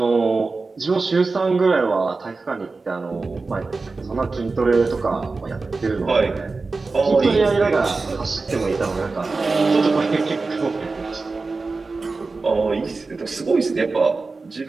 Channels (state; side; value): quieter; left; 3.9 dB